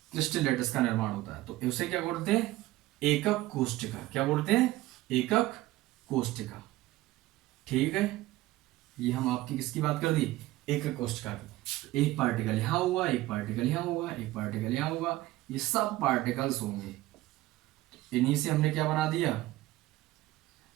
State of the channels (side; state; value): left; quieter; 17.2 dB